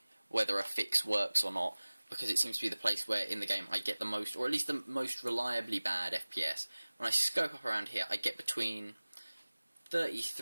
whether a fix works or not, because it seems to be the place where in the game I get the most, or at least the most reliably bad FPS. When I scope up around here, I get between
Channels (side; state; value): both; inverted; correlation -1.00